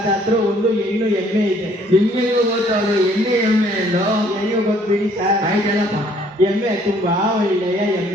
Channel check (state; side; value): normal; both; correlation 0.61